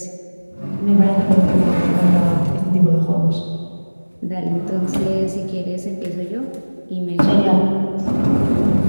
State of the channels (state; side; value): inverted; both; correlation -1.00